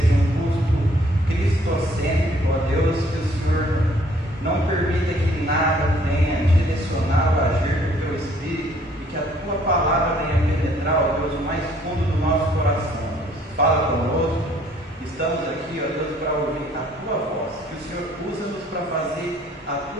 um culto cristocêntrico, ó Deus, que o Senhor não permita que nada venha direcionar o agir do Teu Espírito e que a Tua palavra venha penetrar, ó Deus, o mais fundo do nosso coração. Fala conosco, estamos aqui, ó Deus, para ouvir a Tua voz, que o Senhor usa-nos para fazer a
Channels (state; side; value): normal; both; correlation 0.61